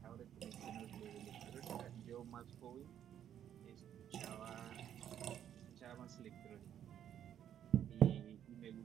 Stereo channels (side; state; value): left; quieter; 10.0 dB